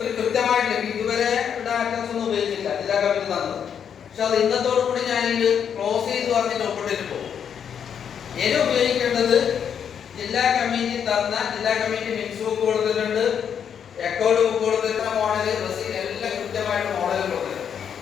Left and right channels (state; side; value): quieter; right; 8.0 dB